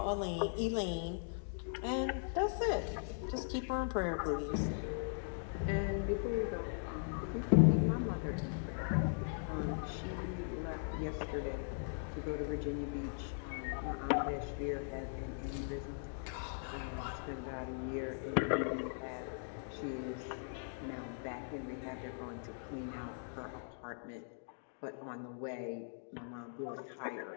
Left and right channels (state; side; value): silent; right; digital silence